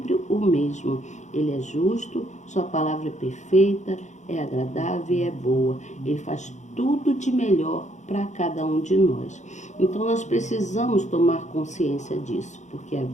o mesmo. Ele é justo, sua palavra é perfeita, é agradável e é boa. Ele faz tudo de melhor para cada um de nós. Então nós precisamos tomar consciência disso, porque a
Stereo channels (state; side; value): late; right; 0.34 ms